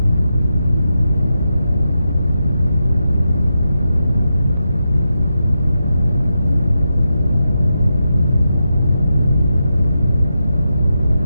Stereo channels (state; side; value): inverted; both; correlation -0.88